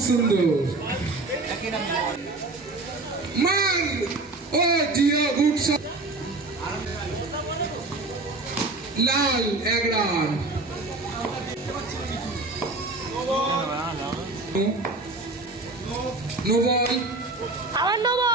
সুন্দর মার, ও জিও, গুড শট। লাল 1 রান। নো বল, আবার নো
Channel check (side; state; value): left; quieter; 3.2 dB